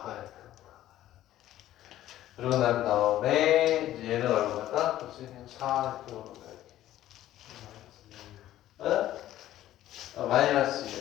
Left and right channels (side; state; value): right; quieter; 13.5 dB